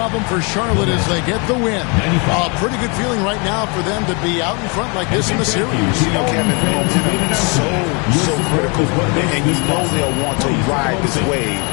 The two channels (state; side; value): quieter; right; 32.8 dB